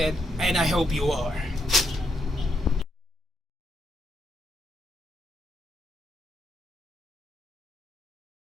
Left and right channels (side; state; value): both; normal; correlation 0.78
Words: and I hope you are.